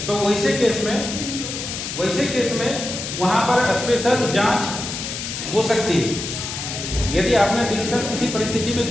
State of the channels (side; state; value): left; noise; hiss, 6 dB below the sound